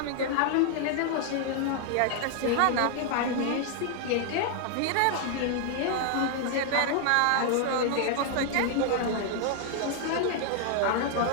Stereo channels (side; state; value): both; different; correlation 0.00